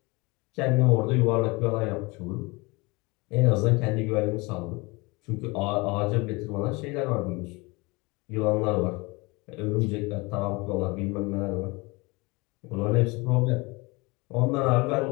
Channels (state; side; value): quieter; right; 25.6 dB